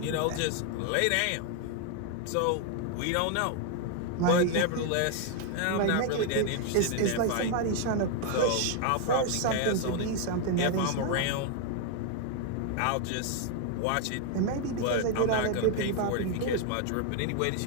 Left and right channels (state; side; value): different; both; correlation 0.00